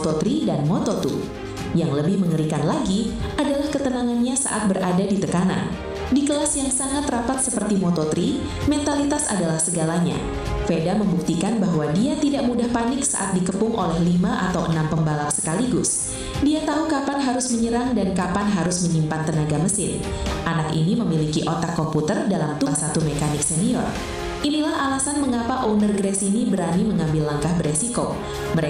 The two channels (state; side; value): identical; both; correlation 1.00